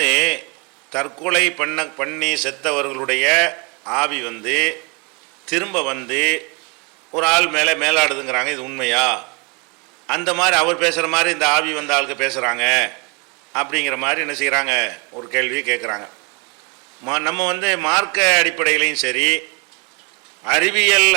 தற்கொலை பண்ணி செத்தவர்களுடைய ஆவி திரும்ப ஒரு ஆள் மேலே மேலாடுதுங்கிறாங்க. இது உண்மையா? அந்த மாதிரி அவர் பேசுகிற மாதிரி இந்த ஆவி ஆளுக்கு பேசுகிறாங்க அப்படிங்கிற மாதிரி என்ன செய்கிறாங்க, ஒரு கேள்வியை கேட்குறாங்க. நம்ம மார்க்க அடிப்படையிலையும் சரி, அறிவியல்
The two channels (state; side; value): quieter; left; 29.8 dB